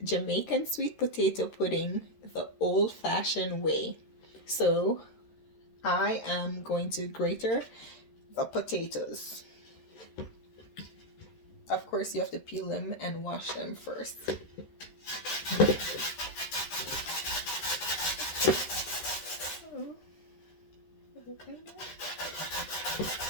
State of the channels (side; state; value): right; late; 13 ms